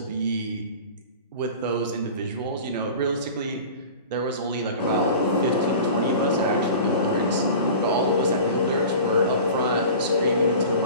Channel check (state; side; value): inverted; both; correlation -0.38